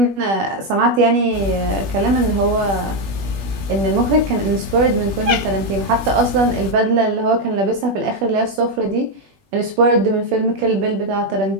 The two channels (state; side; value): late; left; 20 ms